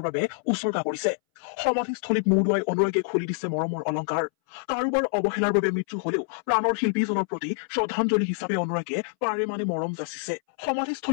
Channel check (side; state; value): right; silent; 61 dB below the other